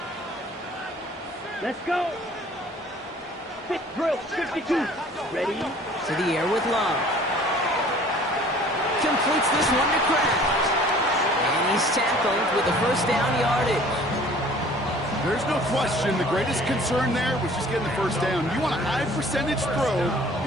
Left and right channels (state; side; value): normal; both; correlation 0.51